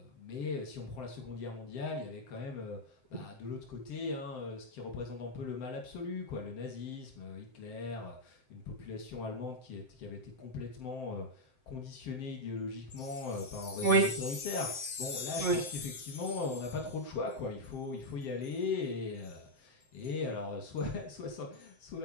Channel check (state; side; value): late; right; 7.7 ms